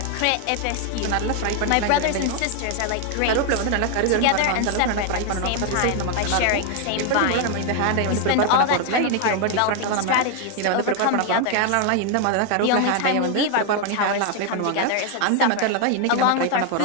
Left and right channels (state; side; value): different; both; correlation 0.00